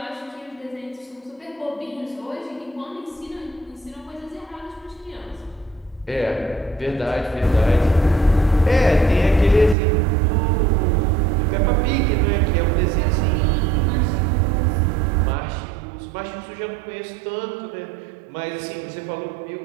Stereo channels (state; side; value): drops out; left; at 9.8 s